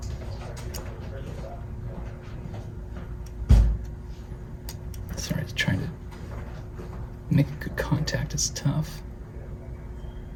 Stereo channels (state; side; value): identical; both; correlation 1.00